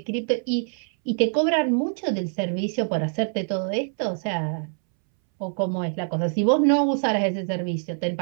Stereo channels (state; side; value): silent; left; 62 dB below the other